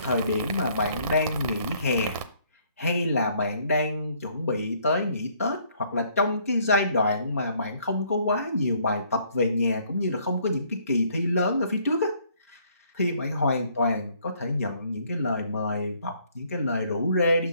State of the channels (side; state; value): both; inverted; correlation -0.65